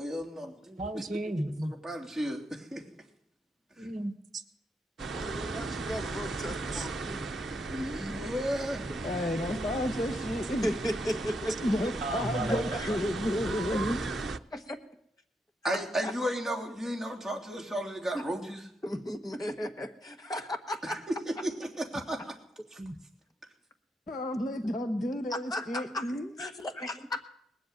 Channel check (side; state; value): both; normal; correlation 0.80